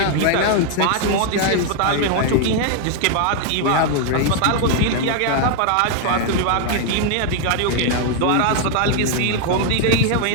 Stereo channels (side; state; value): both; different; correlation 0.00